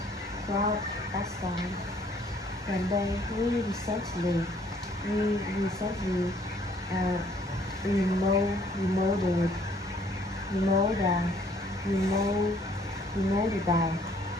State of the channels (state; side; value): normal; both; correlation 0.62